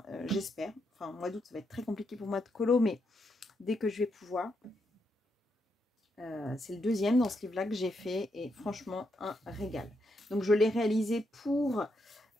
j'espère. Enfin, mois d'août, ça va être très compliqué pour moi de colo, mais dès que je vais pouvoir. C'est le deuxième dans ce livre-là que j'ai fait et franchement, un régal. Donc, je l'ai réalisé pour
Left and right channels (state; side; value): normal; both; correlation 0.80